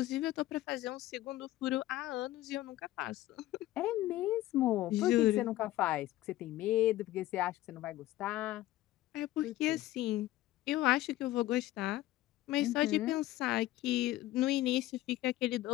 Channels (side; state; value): right; quieter; 15.8 dB